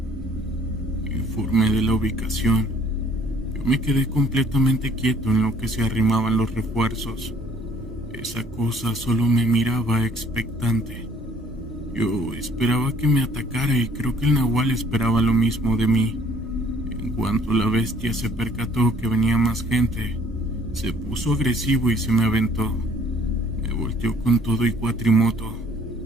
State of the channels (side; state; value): both; normal; correlation 0.59